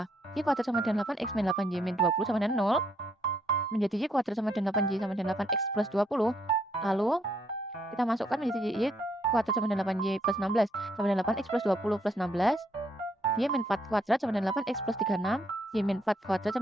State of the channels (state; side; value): normal; both; correlation 0.72